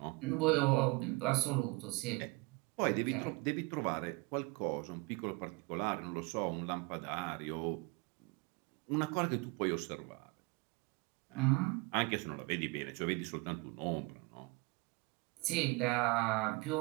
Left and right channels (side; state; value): left; quieter; 26.4 dB